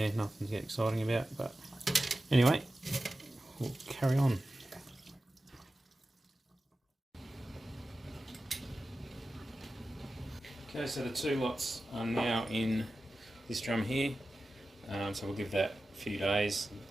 nothing to get exciting about, but anyway, we'll carry on. Okay, so the 2 lots are now in this drum here, so we'll give that a few days.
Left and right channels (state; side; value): normal; both; correlation 0.94